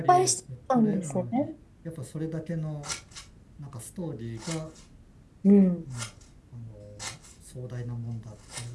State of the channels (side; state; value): both; identical; correlation 1.00